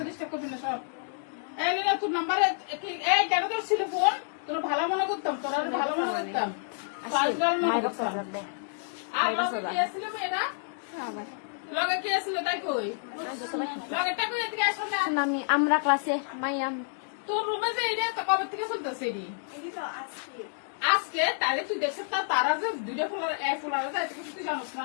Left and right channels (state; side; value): silent; right; digital silence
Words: ডিস্টার্ব করবি না সর এই না তোর নাম্বারে এই টাকা তো ছিল ফোন তোর ভালো মনে করতাম তোর ভালো মনে করতাম মাইরা সাজাবে আর কি আসলে মেয়েরা আবার লগে কি আসলে তাই কই লগে টাকা এদিকে আসো না আমি আমরা ক্লাসে মাইয়াম তোর রুমে যে এটা তো কবে থেকে চলতেছে এডি আজকে তাহলে তুই দেখছিস তারা যে দুইটা ফুলার যায় তুই জানিস